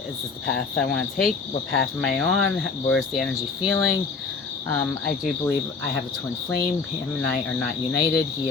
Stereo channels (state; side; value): quieter; right; 4.6 dB